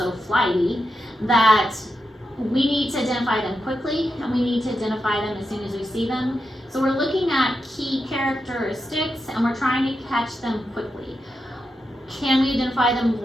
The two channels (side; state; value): both; normal; correlation 0.87